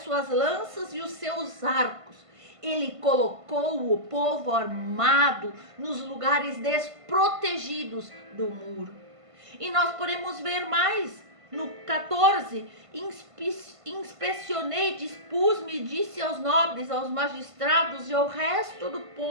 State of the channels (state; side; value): late; left; 1.5 ms